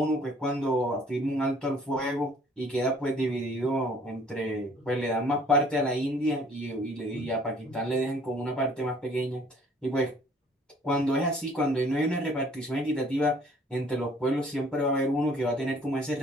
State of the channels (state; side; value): normal; both; correlation 0.57